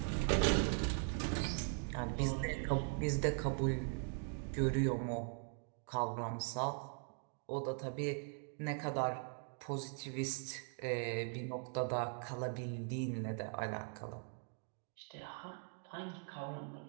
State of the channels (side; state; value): left; silent; 50 dB below the other